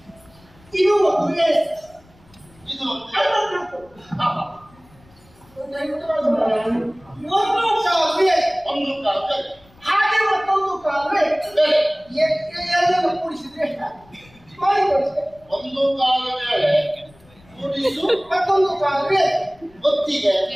ಇದು ಒಂದು ವೇಳೆ ಇದು ಒಂದು ಕಾಲುವೆ ಒಂದು ಕಾಲಕ್ಕೆ ಹಾಗೆ ಮತ್ತೊಂದು ಕಾಲುವೆ ಎರಡನ್ನು ಕೂಡಿಸಿದ್ರೆ ಎಷ್ಟಾಗುತ್ತೆ ಮಾಡಿ ಕೊಡಿಸ್ತೇವೆ. ಒಂದು ಕಾಲ ವೇಳೆ ಕೂಡಿಸು ಮತ್ತೊಂದು ಕಾಲುವೆ ಗೊತ್ತಿಗೆ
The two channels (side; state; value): left; noise; rumble, 28 dB below the sound